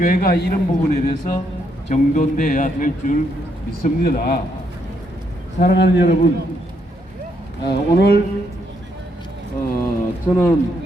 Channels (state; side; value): normal; both; correlation 0.75